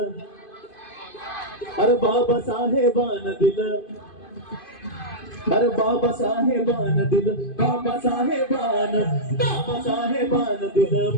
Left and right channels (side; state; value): right; late; 2.5 ms